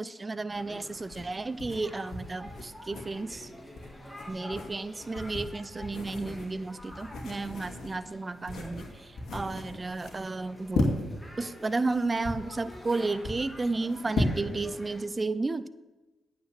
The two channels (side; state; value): both; normal; correlation 0.92